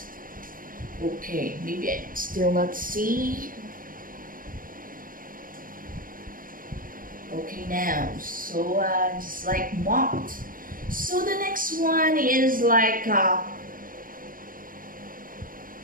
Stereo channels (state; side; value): late; left; 0.40 ms